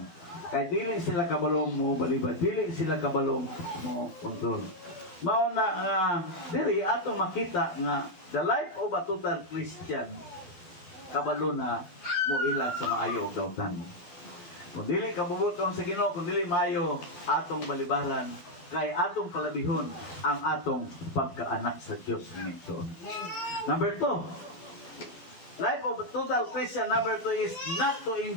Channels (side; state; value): right; late; 12 ms